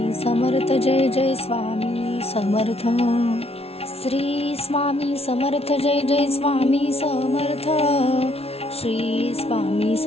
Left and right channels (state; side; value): late; right; 0.30 ms